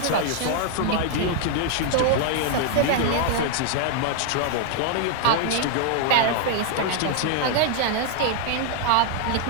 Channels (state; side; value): different; both; correlation 0.00